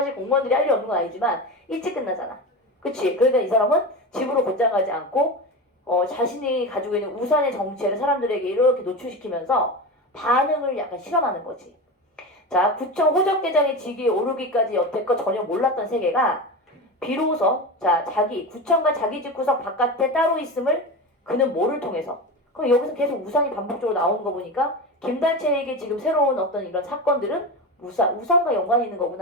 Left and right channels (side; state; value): both; normal; correlation 0.23